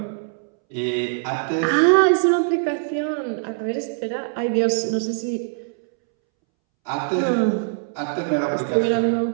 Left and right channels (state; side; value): silent; left; 64 dB below the other